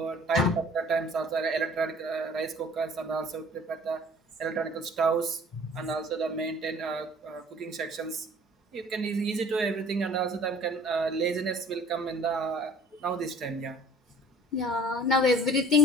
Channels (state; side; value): normal; both; correlation 0.50